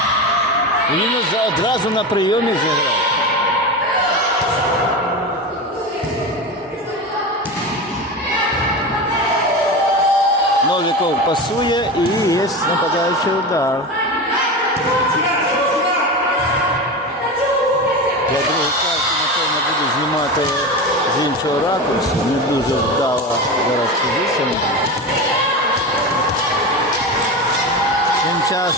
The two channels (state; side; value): normal; both; correlation 0.24